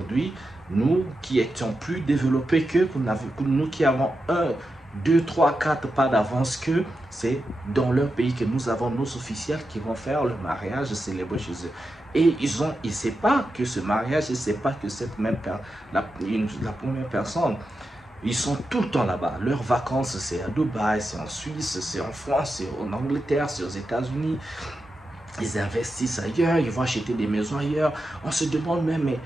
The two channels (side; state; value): both; normal; correlation 0.89